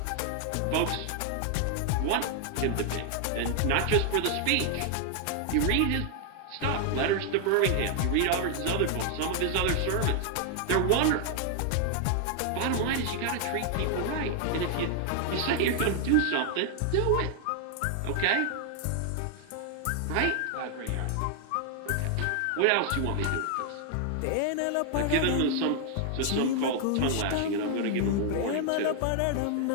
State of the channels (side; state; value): both; different; correlation 0.00